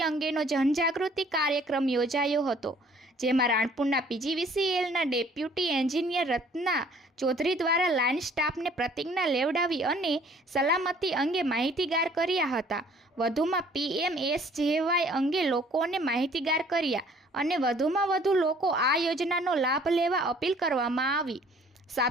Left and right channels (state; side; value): normal; both; correlation 0.57